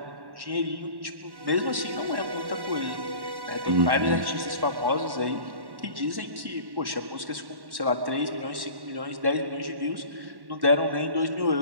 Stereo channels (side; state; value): left; late; 1.1 ms